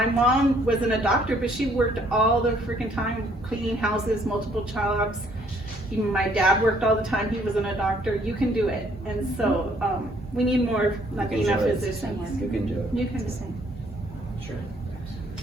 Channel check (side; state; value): both; normal; correlation 0.64